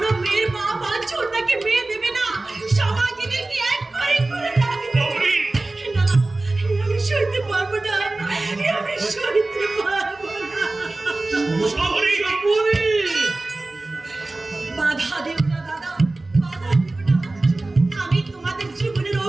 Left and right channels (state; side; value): quieter; left; 3.0 dB